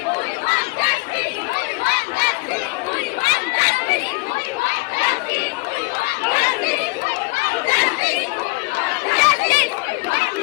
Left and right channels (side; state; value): right; quieter; 27.2 dB